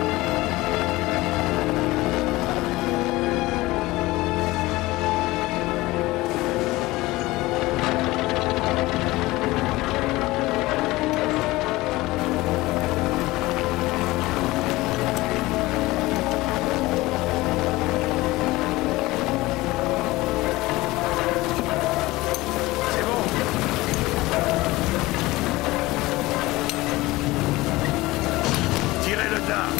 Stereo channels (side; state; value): right; quieter; 19.7 dB